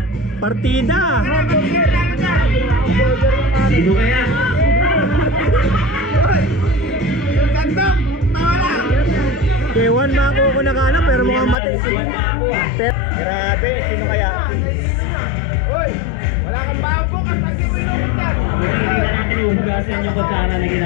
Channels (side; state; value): right; drops out; at 11.6 s